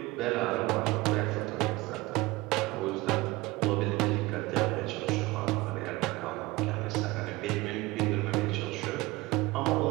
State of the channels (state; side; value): quieter; left; 21.2 dB